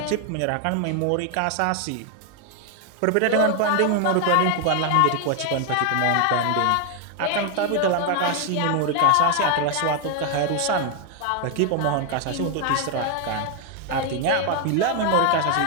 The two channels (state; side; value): different; both; correlation 0.00